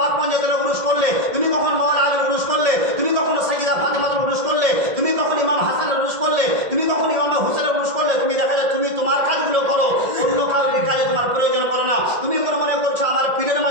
পাঞ্জাতের উরুস করলে? তুমি কখন মাওলানা আলীর উরুস করলে? তুমি কখন সাইয়্যিদা ফাতেমার উরুস করলে? তুমি কখন ইমাম হাসানের উরুস করলে? তুমি কখন ইমাম হুসেনের উরুস করলে? তুমি দেখা যায় তুমি তোমার কাজগুলো করো, অন্য কাউরির কাজে তোমার প্রয়োজন করো না। তুমি মনে করছো আমার পীরের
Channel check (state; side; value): late; left; 1.7 ms